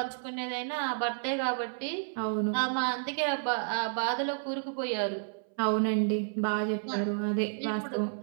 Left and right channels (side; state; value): left; silent; 57 dB below the other